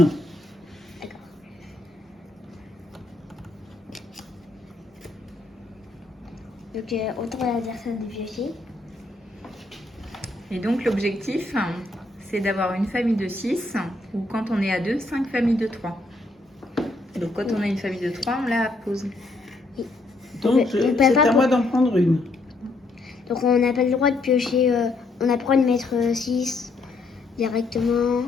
D'accord. Donc autour de l'adversaire de piocher. Et donc, l'objectif, c'est d'avoir une famille de 6, ou quand on est à 2, 5 familles de 3. Et donc, quand on a une famille de 3, on la pose. Donc peut c'est pas à moi d'en prendre une. Donc on n'a pas le droit de piocher, on n'a pas le droit de mettre 6 directement.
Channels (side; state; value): right; quieter; 3.1 dB